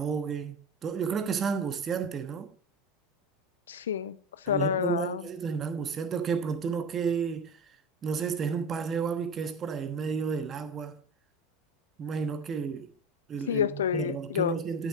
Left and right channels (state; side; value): normal; both; correlation 0.26